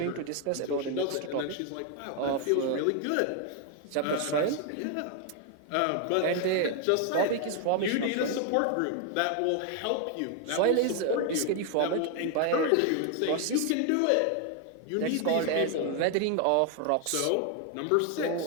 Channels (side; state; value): both; different; correlation 0.01